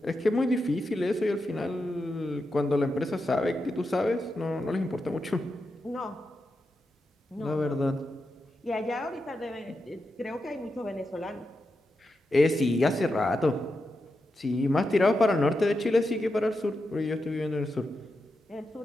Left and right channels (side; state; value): both; normal; correlation 0.88